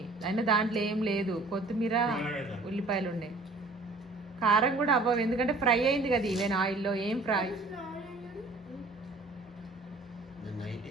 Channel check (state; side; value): quieter; left; 3.1 dB